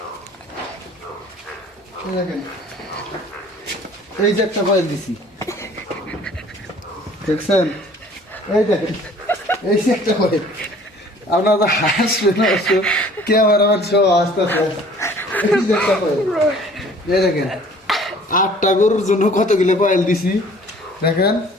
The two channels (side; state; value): both; normal; correlation 0.52